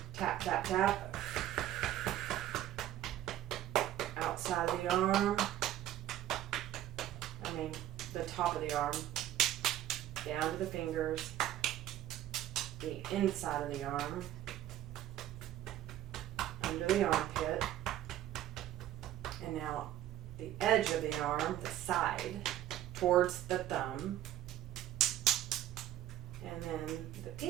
Tap, tap, tap. Outside of the arm. The top of the arm. Down to the fingers. The inside of the arm. Under the armpit. And now the edge of the arm, the side, towards the thumb. And then the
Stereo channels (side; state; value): left; quieter; 12.8 dB